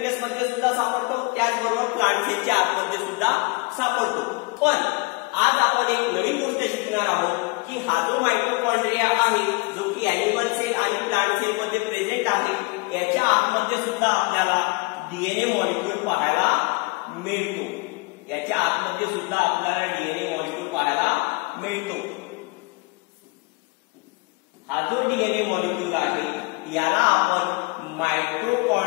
सुद्धा सापडतो, त्याचबरोबर प्लांट सेलच्या आतमध्ये सुद्धा सापडतो। पण आज आपण एक नवीन गोष्ट शिकणार आहोत की हा जो मायटोकॉन्ड्रिया आहे, जो की ॲनिमल सेल आणि प्लांट सेल मध्ये प्रेझेंट आहे, याच्या आतमध्ये सुद्धा आपल्याला डीएनए मॉलिक्यूल पाहायला मिळतो। याच्या आतमध्ये सुद्धा आपल्याला डीएनए मॉलिक्यूल पाहायला मिळतो। हा जो डीएनए मॉलिक्यूल आहे याला आपण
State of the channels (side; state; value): right; quieter; 28.9 dB